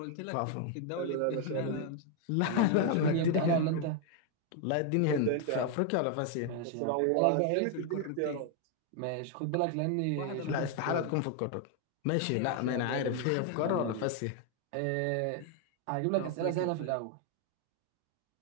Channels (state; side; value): different; both; correlation 0.01